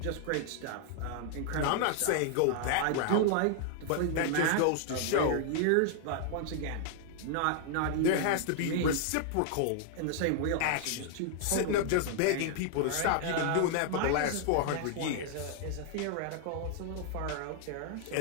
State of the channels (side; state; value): both; different; correlation 0.00